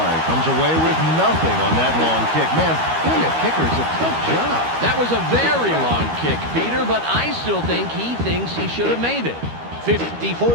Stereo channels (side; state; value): left; late; 13 ms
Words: comes away with nothing on that long kick. Man, being a kicker is a tough job. That was a very long kick, Peter, but I still think he thinks he should have made it.